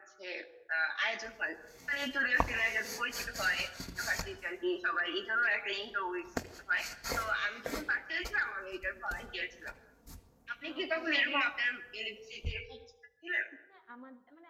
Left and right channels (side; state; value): both; identical; correlation 1.00